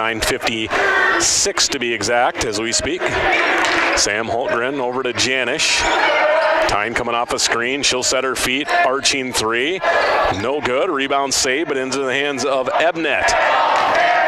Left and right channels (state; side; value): identical; both; correlation 1.00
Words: to be exact as we speak. Sam Hultgren over to Janish. Tyne coming off a screen. She'll set her feet. Arching three. No good. Rebound save, but into the hands of Ebnet.